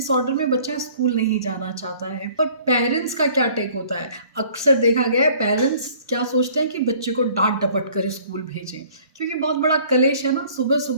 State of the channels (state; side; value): inverted; both; correlation -0.53